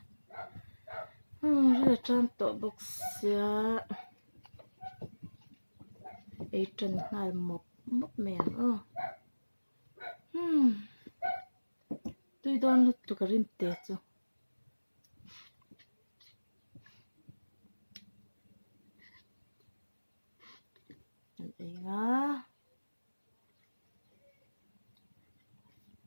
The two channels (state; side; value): inverted; both; correlation -1.00